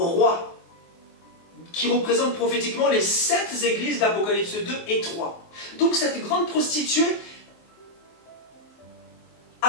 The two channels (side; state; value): right; late; 23 ms